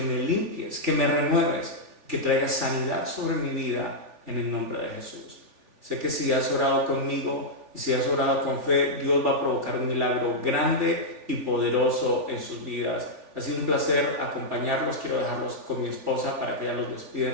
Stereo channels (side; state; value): left; late; 3.4 ms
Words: limpies, que me renueves, que traigas sanidad sobre mi vida en el nombre de Jesús. Sé que si has orado conmigo y si has orado con fe, Dios va a provocar un milagro grande y poderoso en sus vidas. Ha sido un placer acompañarlos. Quiero dejarlos con mi esposa para que ella los despida